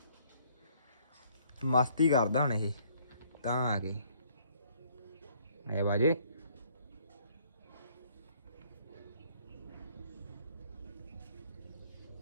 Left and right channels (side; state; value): both; inverted; correlation -0.63